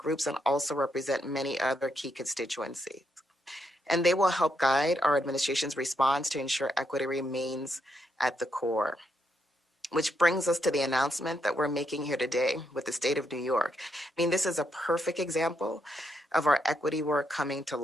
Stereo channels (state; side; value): normal; both; correlation 0.79